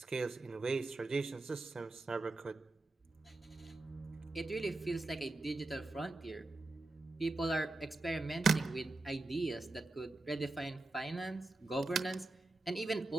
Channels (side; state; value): left; quieter; 3.0 dB